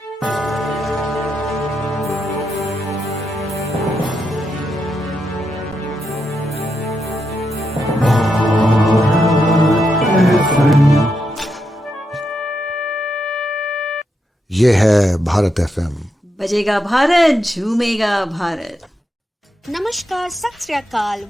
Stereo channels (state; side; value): normal; both; correlation 0.83